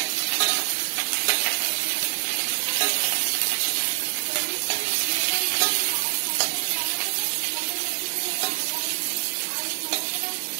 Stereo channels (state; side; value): silent; left; 61 dB below the other